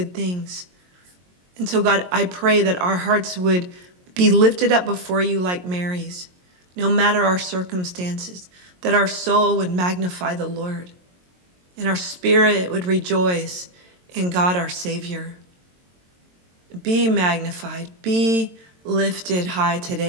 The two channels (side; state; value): left; late; 22 ms